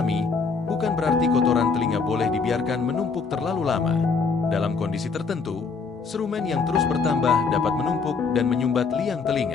bukan berarti kotoran telinga boleh dibiarkan menumpuk terlalu lama. Dalam kondisi tertentu, serumen yang terus bertambah dapat menumpuk dan menyumbat liang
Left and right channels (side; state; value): right; quieter; 4.9 dB